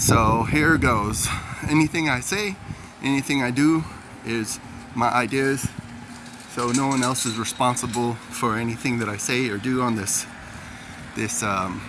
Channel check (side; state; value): both; identical; correlation 1.00